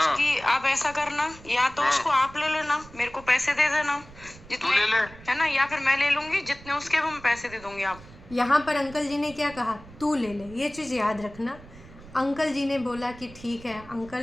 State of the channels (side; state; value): right; noise; rumble, 19 dB below the sound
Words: उसकी आप ऐसा करना, या तो उसको आप ले लेना, मेरे को पैसे दे देना जितने, तू ले ले। है ना, या फिर मैं ले लूंगी, जितने उसके वो मैं पैसे दे दूंगी। आप यहाँ पर अंकल जी ने क्या कहा? तू ले ले। ये चीज़ याद रखना। अंकल जी ने बोला कि ठीक है।